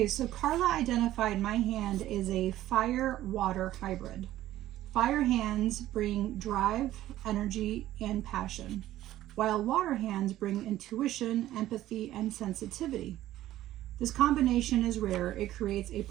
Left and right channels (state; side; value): quieter; left; 14.1 dB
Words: so Carla identified my hand as a fire-water hybrid. Fire hands bring drive, energy, and passion, while water hands bring intuition, empathy, and sensitivity. This combination is rare. It creates a